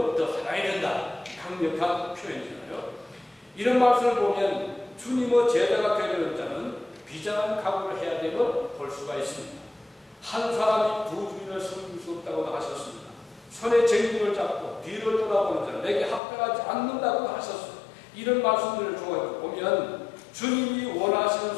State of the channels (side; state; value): right; drops out; at 16.2 s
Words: 더 사랑해야 된다. 강력한 표현이잖아요. 이런 말씀을 보면 주님의 제자가 되려는 자는 비장한 각오를 해야 됨을 볼 수가 있습니다. 한 사람이 두 주인을 섬길 수 없다고 하셨습니다. 손에 쟁기를 잡고 뒤를 돌아보는 자는 내게 합당하지 않는다고 하셨습니다. 이런 말씀들을 보면 주님이